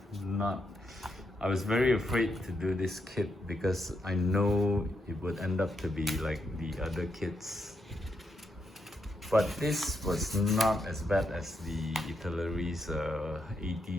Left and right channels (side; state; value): both; normal; correlation 0.81